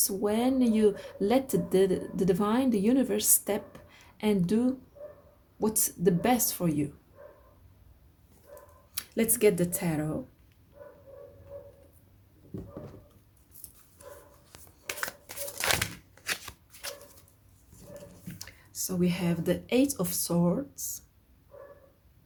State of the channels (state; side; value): identical; both; correlation 1.00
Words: when you let the divine, the universe, step and do what's the best for you. Let's get the tarot. So we have the Eight of Swords.